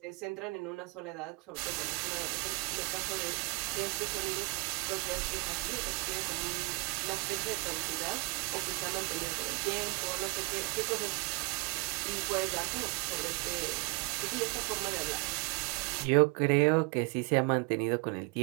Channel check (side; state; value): left; quieter; 28.0 dB